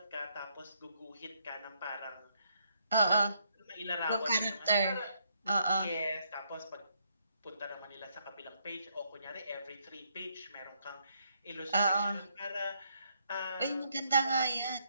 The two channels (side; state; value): both; inverted; correlation -0.73